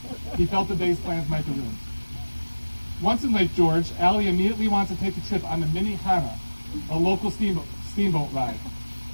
He felt the day's plans might be ruined. Once in Lake George, Allie immediately wanted to take a trip on the Mini Hana, a local steamboat ride.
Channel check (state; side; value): inverted; both; correlation -1.00